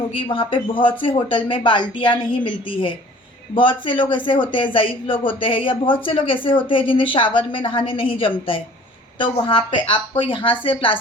वहाँ पे बहुत से होटल में बाल्टियाँ नहीं मिलती है। बहुत से लोग ऐसे होते हैं, ज़ईफ़ लोग होते हैं, या बहुत से लोग ऐसे होते हैं जिन्हें शावर में नहाने नहीं जमता है, तो वहाँ पे आपको यहाँ से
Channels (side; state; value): both; normal; correlation 0.50